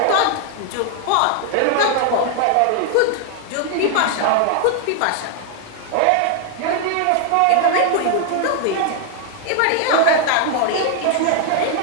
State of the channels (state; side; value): different; both; correlation 0.00